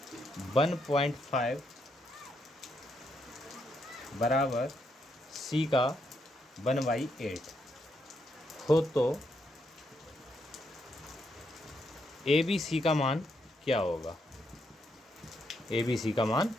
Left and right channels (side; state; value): both; normal; correlation 0.78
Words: 1.5 बराबर सी का 1/8 हो तो ए बी सी का मान क्या होगा, ए बी सी का मान